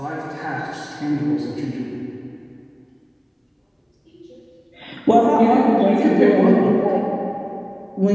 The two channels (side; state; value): both; identical; correlation 1.00